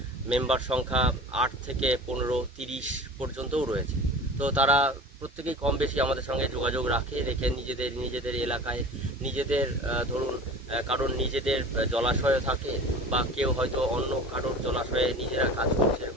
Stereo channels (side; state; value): both; normal; correlation 0.38